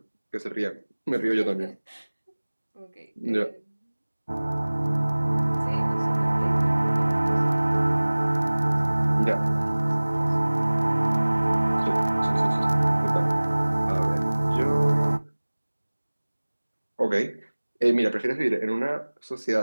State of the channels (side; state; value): both; inverted; correlation -1.00